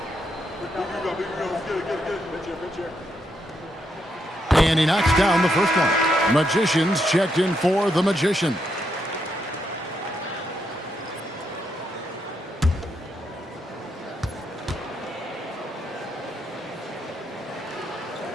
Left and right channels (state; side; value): normal; both; correlation 0.79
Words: And he knocks down the first one. Magicians checked in for the Magician.